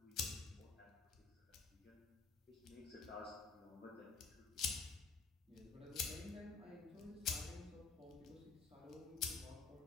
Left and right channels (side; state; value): right; quieter; 4.8 dB